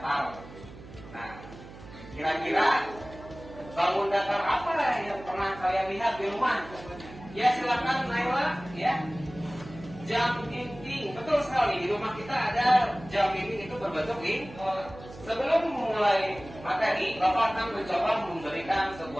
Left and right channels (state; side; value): noise; right; hum, 17 dB below the sound